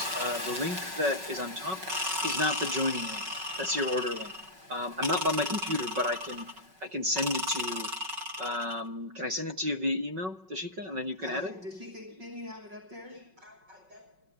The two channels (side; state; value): left; late; 5.4 ms